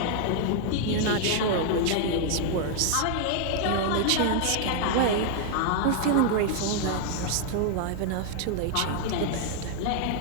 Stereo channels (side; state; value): both; different; correlation 0.00